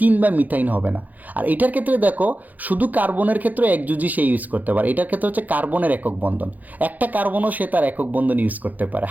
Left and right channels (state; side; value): late; left; 0.081 ms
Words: বা মিথাইন হবে না। আর এটার ক্ষেত্রে দেখো শুধু কার্বনের ক্ষেত্রে একযোজি সে ইউজ করতে পারে। এটার ক্ষেত্রে হচ্ছে কার্বনের একক বন্ধন, একটা কার্বনও সে তার একক বন্ধন ইউজ করতে পারে